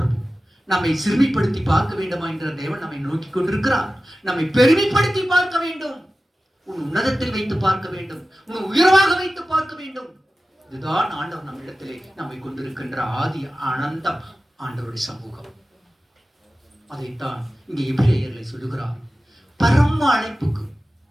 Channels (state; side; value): normal; both; correlation 0.95